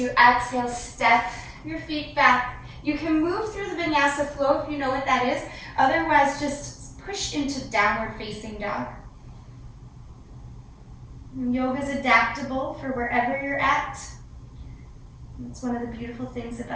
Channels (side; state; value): both; identical; correlation 1.00